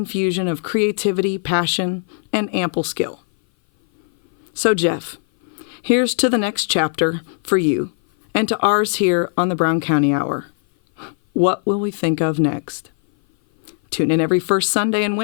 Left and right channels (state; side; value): silent; right; 58 dB below the other